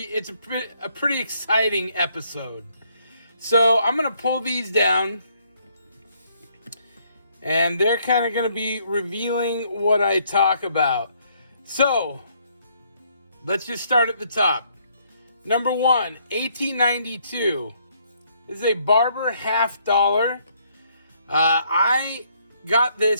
a pretty exciting episode. So I'm going to pull these down, and they're kind of going to be revealing what I talk about. So let's just start at the top. Number 1, 1892. This is a Barber $1/2. I got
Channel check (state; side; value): inverted; both; correlation -0.69